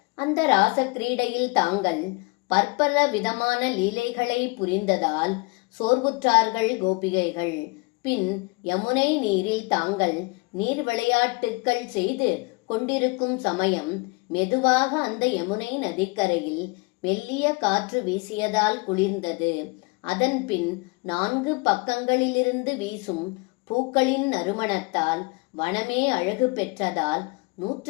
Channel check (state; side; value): quieter; right; 28.3 dB